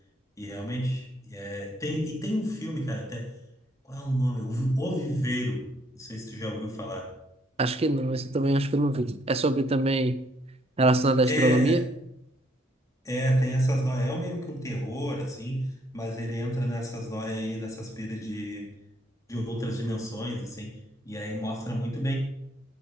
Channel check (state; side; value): normal; both; correlation 0.69